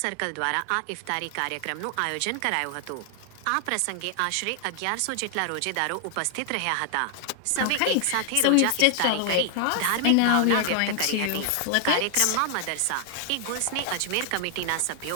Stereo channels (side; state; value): both; different; correlation 0.00